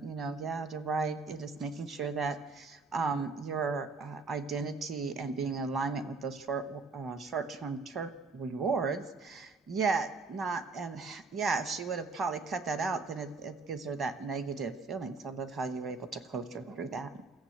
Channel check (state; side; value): quieter; left; 4.1 dB